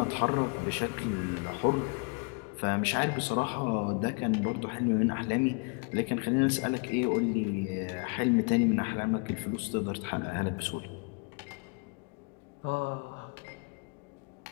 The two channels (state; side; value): quieter; right; 34.9 dB